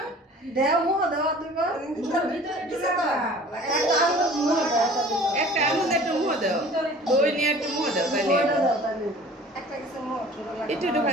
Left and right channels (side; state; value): both; normal; correlation 0.47